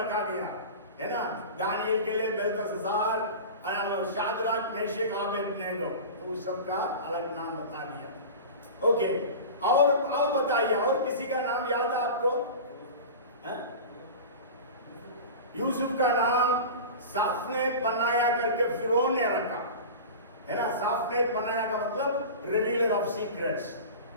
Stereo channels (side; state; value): both; inverted; correlation -0.32